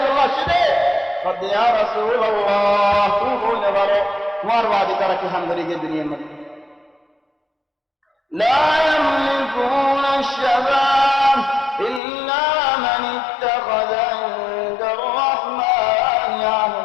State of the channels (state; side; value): drops out; right; at 12.0 s